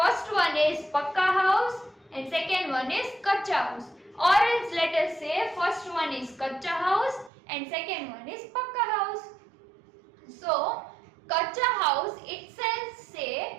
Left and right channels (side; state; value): left; drops out; at 7.3 s